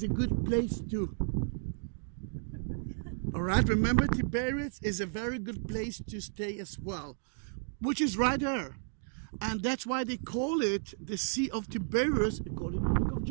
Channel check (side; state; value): left; silent; digital silence